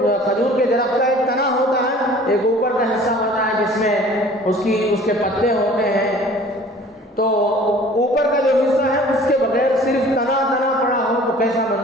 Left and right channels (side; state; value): both; normal; correlation 0.48